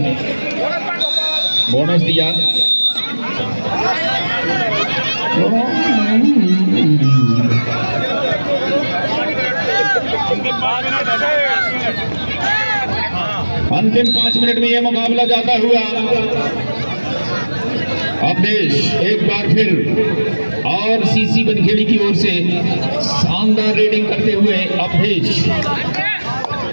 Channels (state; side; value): inverted; both; correlation -1.00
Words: बोनस दिया। अंतिम 5 मिनट में यह मुकाबला जाता हुआ अवधेश एक बार फिर आरसीसी बनखेड़ी की ओर से शानदार रेडिंग करते हुए अवधेश